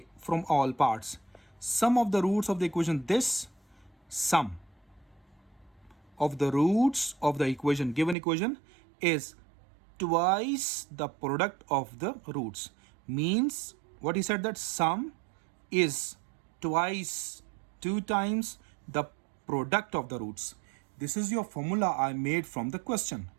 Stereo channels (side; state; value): left; drops out; at 8.2 s